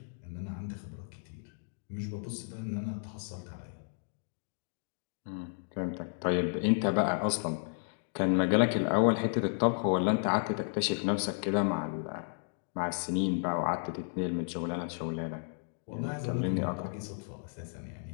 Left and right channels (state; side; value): silent; right; digital silence